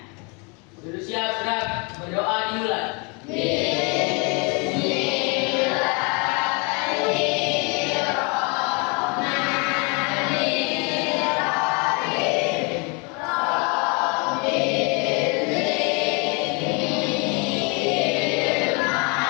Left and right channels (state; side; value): quieter; right; 31.9 dB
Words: Sudah siap, sudah berdoa dimulai.